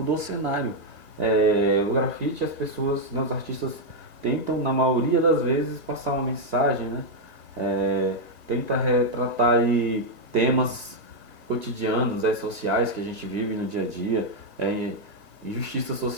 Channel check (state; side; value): late; left; 2.6 ms